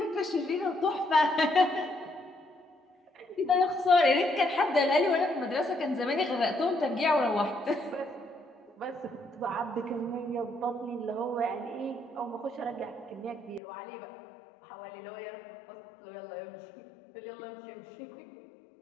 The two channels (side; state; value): right; drops out; at 13.6 s